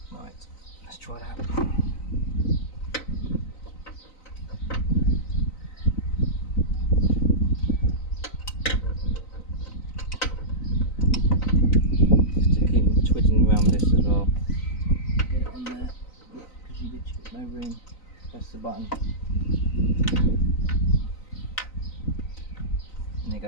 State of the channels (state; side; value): late; right; 3.9 ms